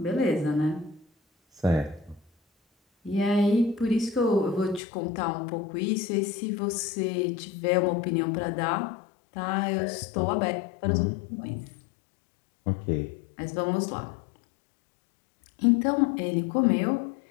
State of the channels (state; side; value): drops out; right; at 4.8 s